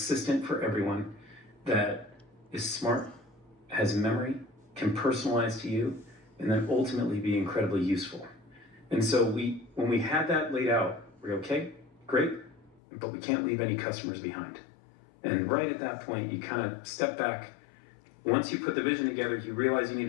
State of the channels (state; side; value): drops out; right; at 12.8 s